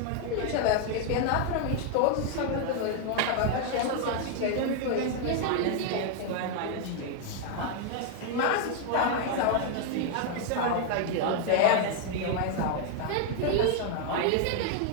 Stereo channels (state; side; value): different; both; correlation 0.00